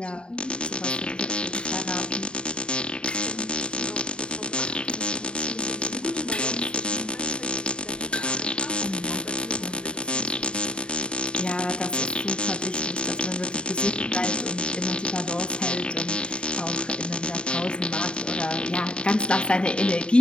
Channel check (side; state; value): right; late; 0.052 ms